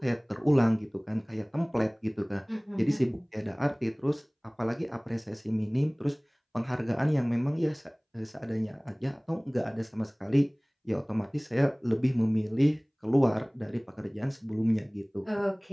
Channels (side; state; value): both; identical; correlation 1.00